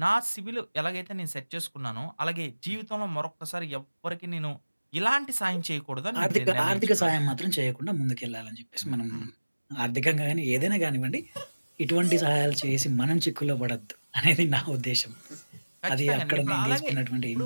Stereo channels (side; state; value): both; inverted; correlation -1.00